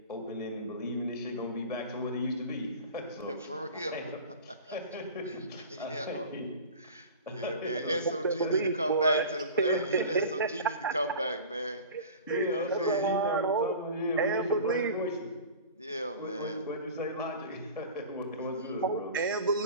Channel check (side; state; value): both; inverted; correlation -0.37